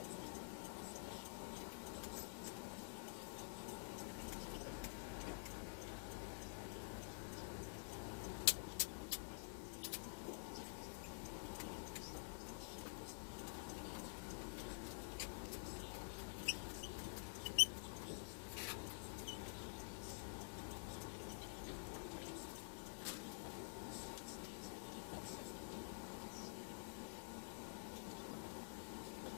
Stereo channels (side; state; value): right; silent; digital silence